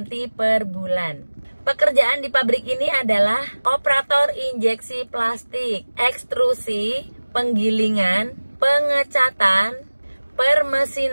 per bulan. Pekerjaan di pabrik ini adalah operator injeksi plastik, ekstrusi, penggilingan, pengecatan,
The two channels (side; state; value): both; inverted; correlation -1.00